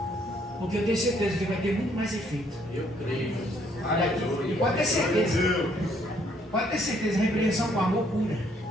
Porque eu tenho certeza que vai ter muito mais efeito. Eu creio. E pode ter certeza. Pode ter certeza, a repreensão com amor cura.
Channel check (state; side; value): normal; both; correlation 0.67